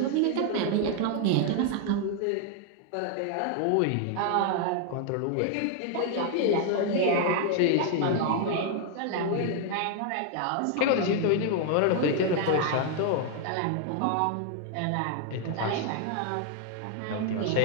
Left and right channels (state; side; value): different; both; correlation 0.00